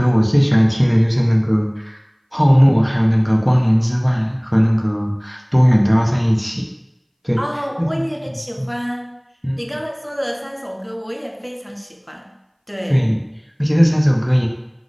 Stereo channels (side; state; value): both; identical; correlation 1.00